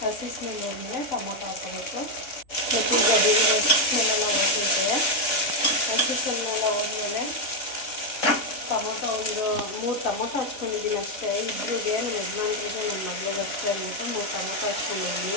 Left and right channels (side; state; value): right; late; 3.6 ms